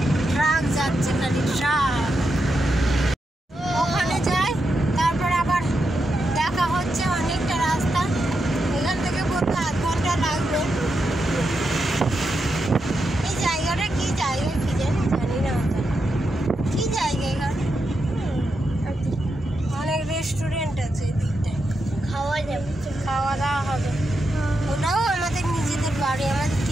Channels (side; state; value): both; normal; correlation 0.85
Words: ট্রাক যাচ্ছে, খালি ট্রাক। ওখানে যাই, তারপর আবার দেখা হচ্ছে। অনেকটা রাস্তা, এখান থেকে বলতে আধ ঘন্টা লাগবে। এই জায়গাটা কি জায়গা কি জানি না কি জায়গা। এখানে অনেক রেস্টুরেন্ট আছে এদিকটায়, খাওয়া দাওয়া হবে। ওটাও আমাদের নিজেদের বাড়ি, আমাদের